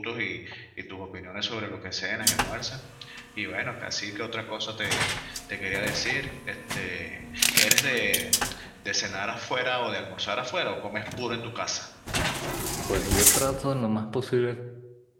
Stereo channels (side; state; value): both; identical; correlation 1.00